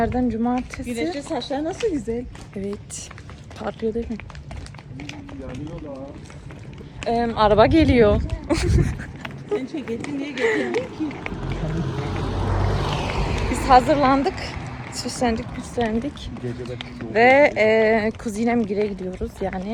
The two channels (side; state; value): both; identical; correlation 1.00